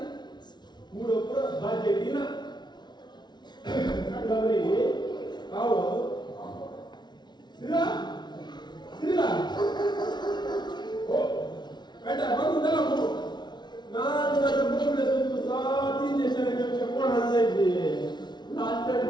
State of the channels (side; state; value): right; late; 0.20 ms